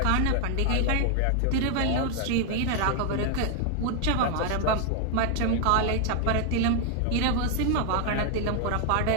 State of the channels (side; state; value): both; different; correlation 0.00